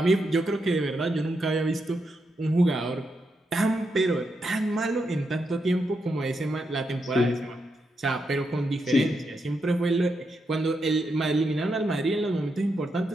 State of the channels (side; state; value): both; normal; correlation 0.83